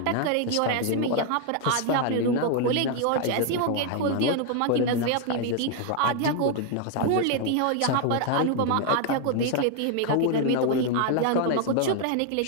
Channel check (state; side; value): different; both; correlation 0.00